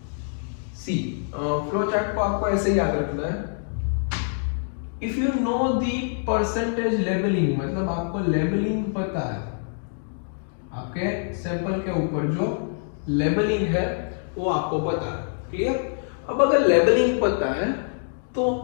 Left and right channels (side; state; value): right; silent; digital silence